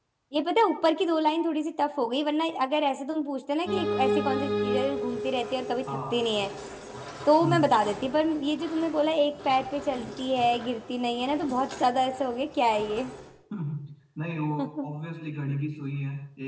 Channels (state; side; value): identical; both; correlation 1.00